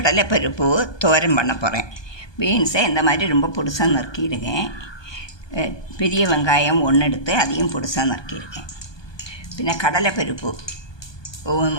தோரன் பண்ண போகிறேன். பீன்ஸை இந்த மாதிரி ரொம்ப பொடிசாக நறுக்கிடுவேன். பெரிய வெங்காயம் ஒன்று எடுத்து அதையும் பொடிசாக நறுக்கிடுவேன். பின்ன கடலைப்பருப்பு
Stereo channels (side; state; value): right; late; 1.2 ms